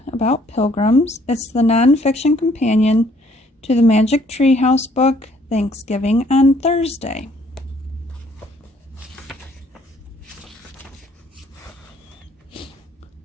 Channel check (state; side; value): normal; both; correlation 0.63